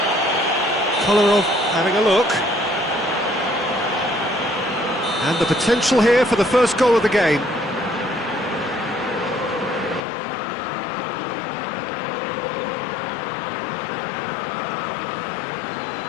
Kolarov having a look. And the potential here for the first goal of the game.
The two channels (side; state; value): right; drops out; at 10.0 s